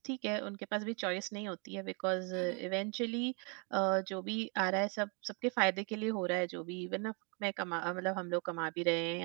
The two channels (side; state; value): left; quieter; 35.6 dB